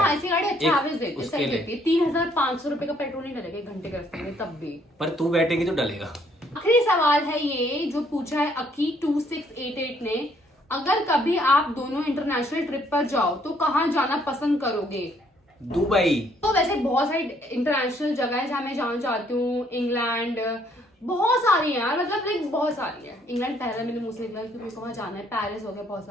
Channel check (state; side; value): normal; both; correlation 0.66